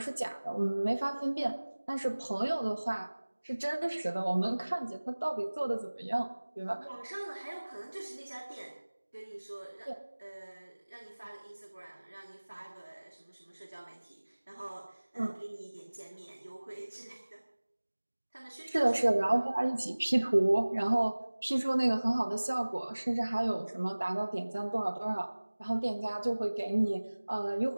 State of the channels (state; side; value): inverted; both; correlation -1.00